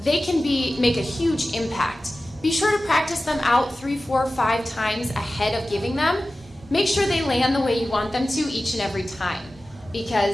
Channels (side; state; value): both; normal; correlation 0.95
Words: can make a huge impact. Be sure to practice them out 3, 4, 5 times ahead of giving them. Make sure they land the way you want them to each and every time,